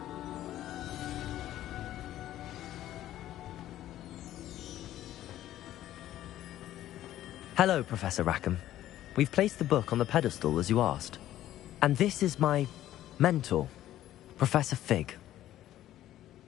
Hello, Professor Rackham. We've placed the book on the pedestal as you asked. And this is my mentor, Professor Fig.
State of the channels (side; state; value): right; quieter; 13.3 dB